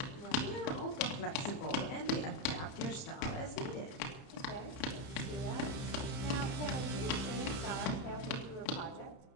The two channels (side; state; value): right; late; 31 ms